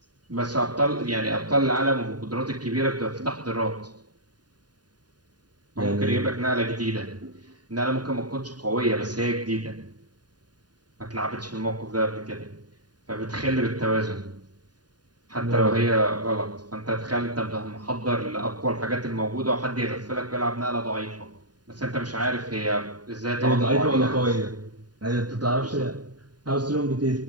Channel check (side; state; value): left; late; 0.70 ms